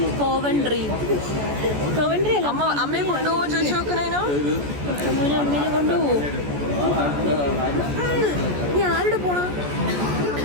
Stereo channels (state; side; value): late; left; 14 ms